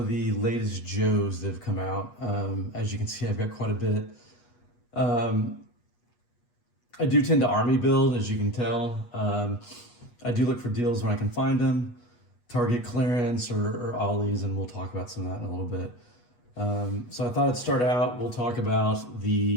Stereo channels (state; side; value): late; right; 8.2 ms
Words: the latest Joes that have come out. As you can see, I've got quite a bit. Um, I do tend to army build, as you can tell. I do look for deals when I can find them, target clearance or ollies, and we'll talk about some of that in a little bit. So I thought I'd start out, we'll talk about